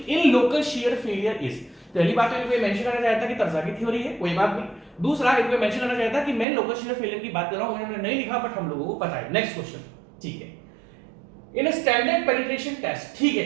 local shear failure is. पहली बात तो इनको मेंशन करना चाहिए था कि तरजागी थ्योरी है, कोई बात नहीं। दूसरा इनको मेंशन करना चाहिए था कि मैं लोकल शियर फेलियर की बात कर रहा हूं, उन्होंने नहीं लिखा बट हम लोगों को पता है। नेक्स्ट क्वेश्चन, ठीक है, इन स्टैंडर्ड पेनिट्रेशन टेस्ट। ठीक है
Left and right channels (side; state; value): left; drops out; at 6.5 s